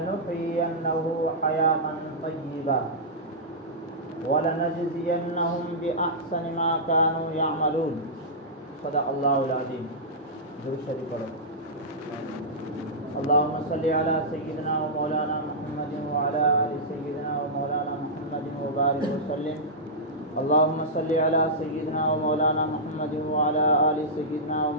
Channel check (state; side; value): normal; both; correlation -0.13